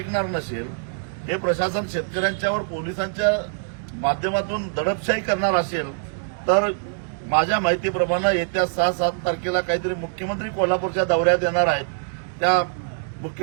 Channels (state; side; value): silent; left; digital silence